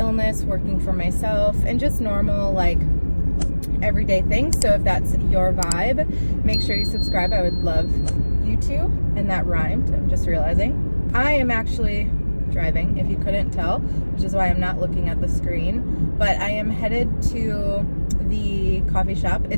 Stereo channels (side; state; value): both; inverted; correlation -1.00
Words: working for myself, and just normal like everyday things. So if that's your vibe, make sure you subscribe. I would love you to. And that rhymed, I'm just realizing. I am actually driving, if you couldn't tell, which is why I'm not looking at the screen, but I am headed to the coffee shop.